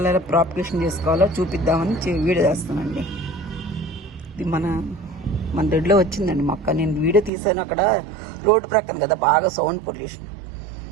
ప్రాపగేషన్ చేసుకోవాలో చూపిద్దామని వీడియో చేస్తానండి. ఇది మన దొడ్లో వచ్చిందండి మొక్క. నేను వీడియో తీసాను, అక్కడ రోడ్డు ప్రక్కన కదా బాగా సౌండ్ పొల్యూషన్.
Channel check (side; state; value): left; drops out; at 7.3 s